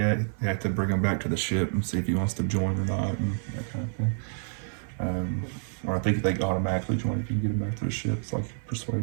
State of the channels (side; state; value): left; silent; digital silence